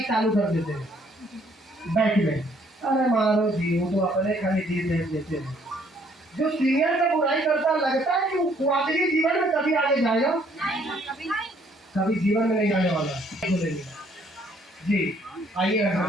चालू कर देते हैं बैठ में, अरे मारो जी वो तो अपने खाली जी देख देते हैं। जो सीनियर का बुराई करता लगता है कि वो आखिरी जीवन में कभी आगे जाएगा, कभी जीवन में नहीं जाने वाला। जी आइए घर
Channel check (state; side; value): normal; both; correlation 0.64